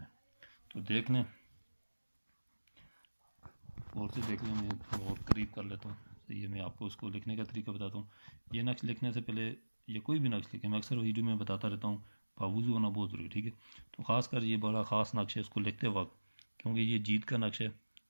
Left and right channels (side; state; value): both; inverted; correlation -1.00